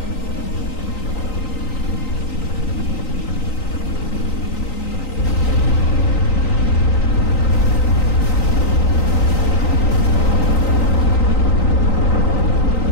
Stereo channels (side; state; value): right; late; 3.9 ms